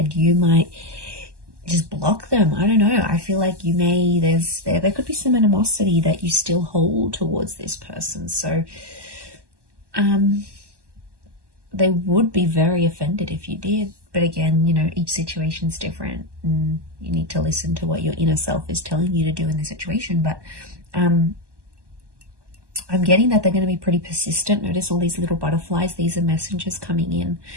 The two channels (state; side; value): late; left; 1.2 ms